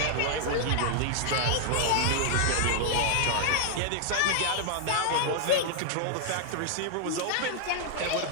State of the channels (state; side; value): different; both; correlation 0.00